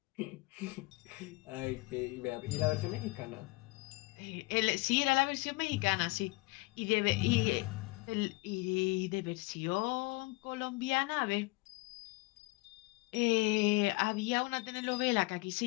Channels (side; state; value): right; quieter; 24.6 dB